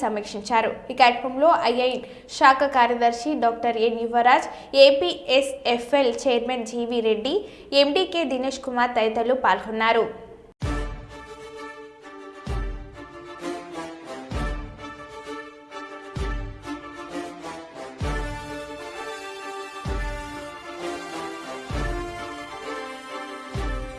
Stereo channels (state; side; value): identical; both; correlation 1.00